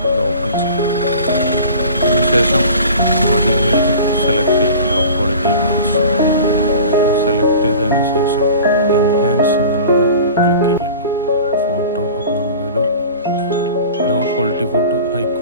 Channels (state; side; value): inverted; both; correlation -0.40